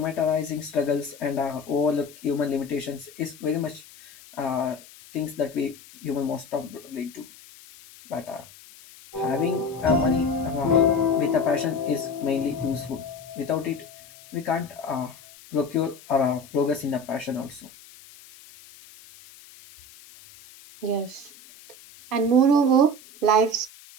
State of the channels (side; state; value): left; noise; hiss, 21 dB below the sound